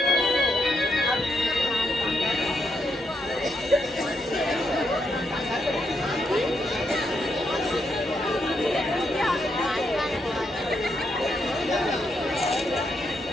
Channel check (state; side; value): normal; both; correlation 0.79